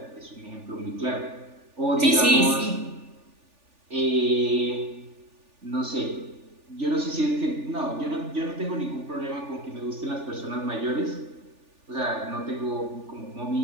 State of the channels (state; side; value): late; left; 3.4 ms